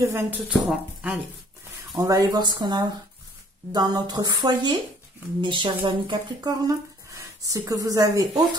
Allez, on va aller voir ce qu'on a dans notre foyer, mes chers amis Capricorne. Ce que vous avez au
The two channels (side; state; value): both; normal; correlation 0.57